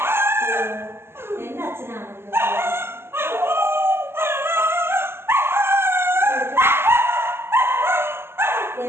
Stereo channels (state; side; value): late; left; 0.12 ms